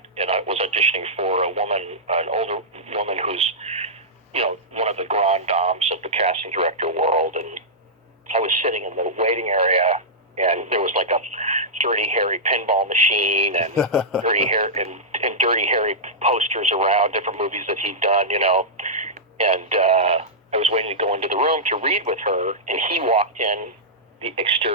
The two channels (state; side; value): normal; both; correlation -0.12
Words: and I was auditioning for an older woman who's, one of the grand dames of the casting director world, and I was sitting in the waiting area, and there was like a Dirty Harry pinball machine and Dirty Harry posters around different movies that he'd done, and I was waiting to go into the room to read with her, and he walked in the